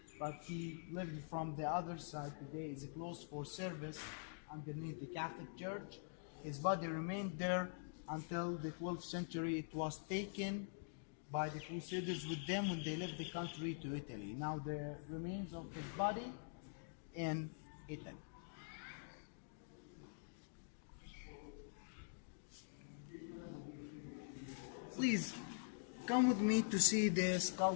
but he lived from the other side. Today is closed for service underneath the Catholic Church. His body remained there until the 12th century. It was taken by the Crusaders with them when they left the country to Italy. Now the remains of his body in Italy. Please come with me to see the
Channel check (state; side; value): silent; right; digital silence